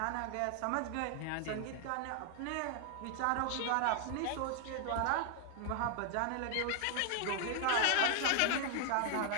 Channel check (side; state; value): both; different; correlation 0.00